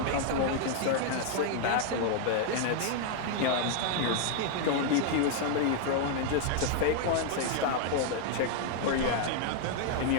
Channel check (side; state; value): both; different; correlation 0.00